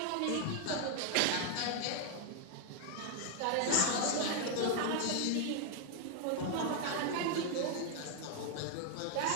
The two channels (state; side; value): different; both; correlation 0.00